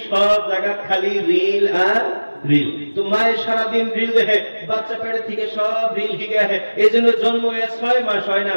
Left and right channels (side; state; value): both; inverted; correlation -1.00